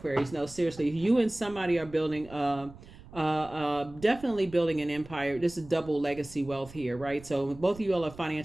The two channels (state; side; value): noise; right; rumble, 19 dB below the sound